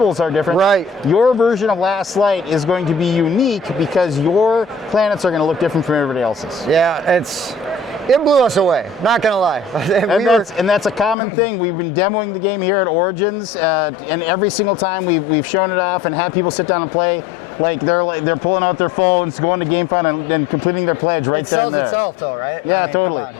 are different. Right. Your version of Last Light is going to be unique because your planets are going to look different from everybody else's. Yeah, it blew us away. Not gonna lie. And that's a common thing. We've been demoing the game here at Origins, and every single time we've shown it off and had people sit down and play. They're pulling out their phones, going to GameFound and completing their pledge right there. It sells itself though, right? Yeah, I mean, totally. come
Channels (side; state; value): right; drops out; at 11.2 s